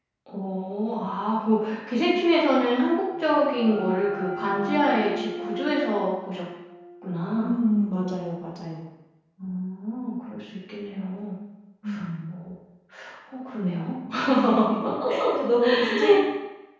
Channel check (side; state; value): both; identical; correlation 1.00